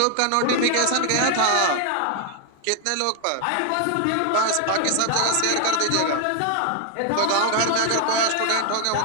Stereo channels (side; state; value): both; different; correlation 0.00